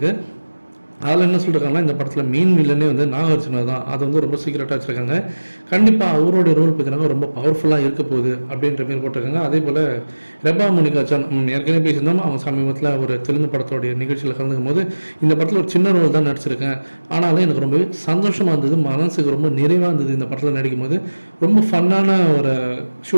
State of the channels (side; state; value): both; inverted; correlation -1.00